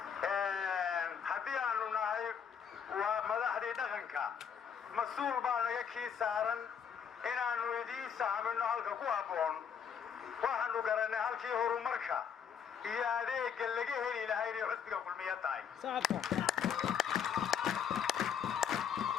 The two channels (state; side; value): quieter; right; 7.6 dB